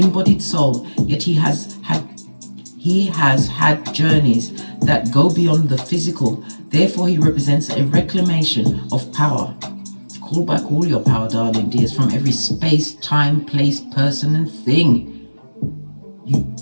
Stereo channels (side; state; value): both; inverted; correlation -1.00